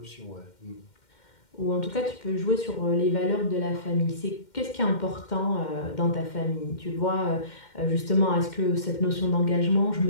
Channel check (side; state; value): right; late; 2.1 ms